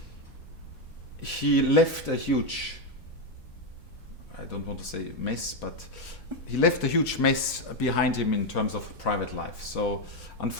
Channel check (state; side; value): normal; both; correlation 0.06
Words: He left a huge, I don't want to say mess, but he left a huge mess behind him in terms of private life. So